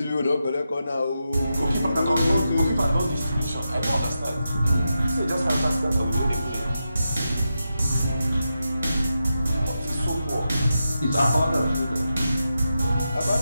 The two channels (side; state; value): both; inverted; correlation -0.88